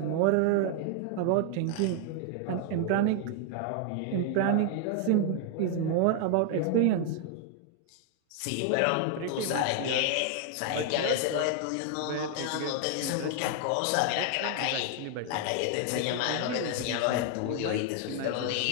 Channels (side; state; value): both; different; correlation 0.00